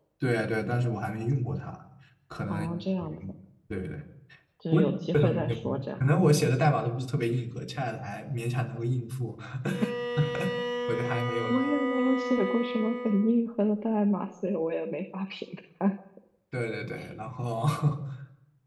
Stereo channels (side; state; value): both; identical; correlation 1.00